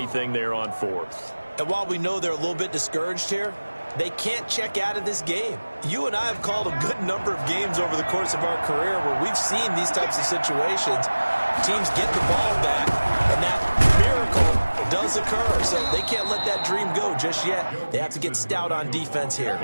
there on 4th. And while we know they're a little bit discouraged here, they can't check out of this game. You and I have called a good number of games over the course of our career where we've seen these types of situations. Teams get the ball back, and that miracle does occur. So they can't let that dream go just yet. They have to get stout on defense here.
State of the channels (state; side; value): inverted; both; correlation -1.00